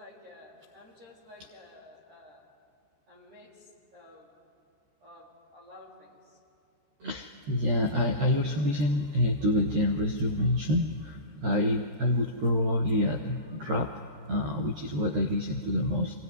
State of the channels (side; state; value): left; late; 13 ms